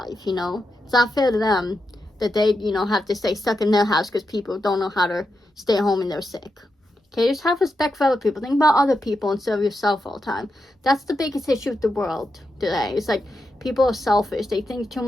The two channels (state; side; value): normal; both; correlation 0.87